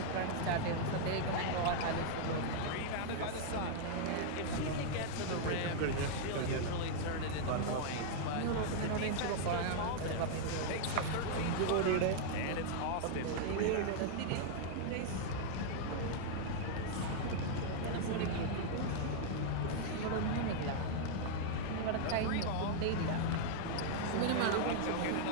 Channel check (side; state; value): both; different; correlation -0.01